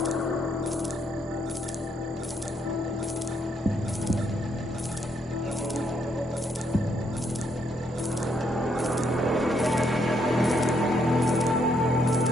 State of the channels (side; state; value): both; normal; correlation 0.73